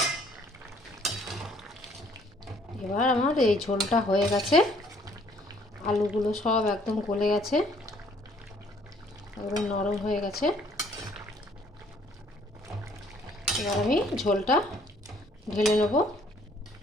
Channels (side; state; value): both; normal; correlation 0.62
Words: এবার আমার এই ঝোলটা হয়ে গেছে, আলুগুলো সব একদম গলে গেছে, একদম নরম হয়ে গেছে। এবার আমি ঝোলটা ঢেলে নেব।